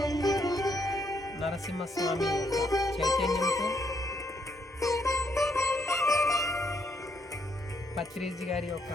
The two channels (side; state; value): both; normal; correlation 0.74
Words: నరసింహస్వామి యొక్క చైతన్యంతో, పత్రిజీ గారి యొక్క